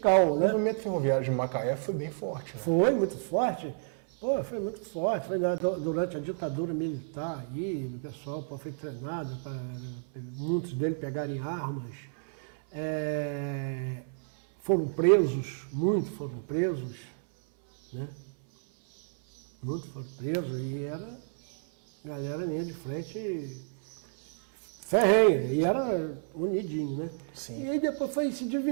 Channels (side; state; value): left; silent; 57 dB below the other